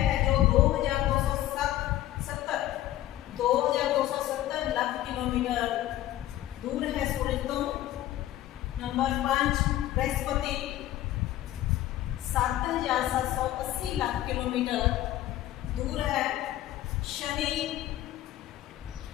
जो 2270 लाख किलोमीटर दूर है सूरज तो। नंबर 5 बृहस्पति 7780 लाख किलोमीटर दूर है। शनि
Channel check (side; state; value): right; quieter; 14.0 dB